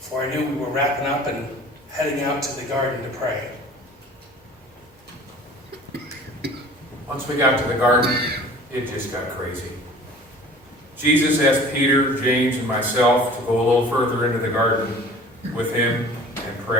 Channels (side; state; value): both; normal; correlation 0.45